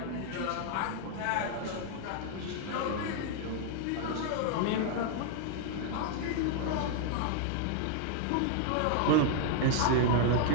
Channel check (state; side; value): different; both; correlation 0.00